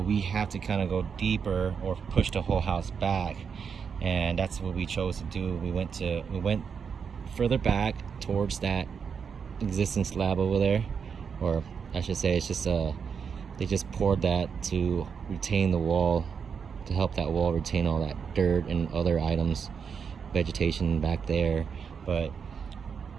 have to kind of go deeper or push the whole house back, and that's what we chose to do. We went further back towards that existing slab over there, or I should say, it's just they just poured that to retain the wall, to help that wall retain all that dirt and other items, vegetation back there. But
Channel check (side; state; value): left; quieter; 6.4 dB